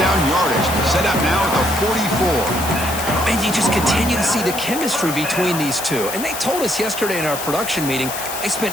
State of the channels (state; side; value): noise; left; hiss, 7 dB below the sound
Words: yardage. Set up now at the 44. And you just continue to see the chemistry between these two. And they told us yesterday in our production meeting, they